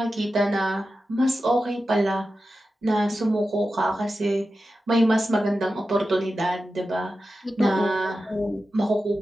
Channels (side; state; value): both; normal; correlation 0.92